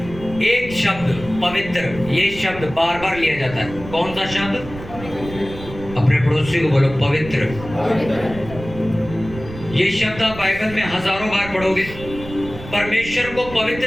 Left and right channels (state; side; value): noise; right; rumble, 13 dB below the sound